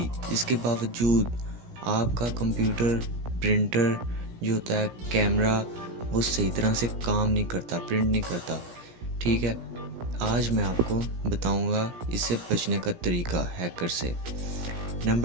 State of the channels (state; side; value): late; left; 17 ms